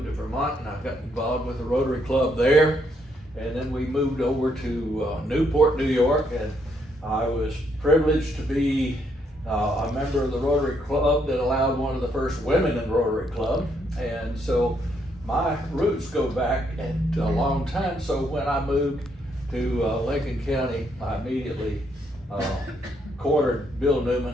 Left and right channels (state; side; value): normal; both; correlation 0.74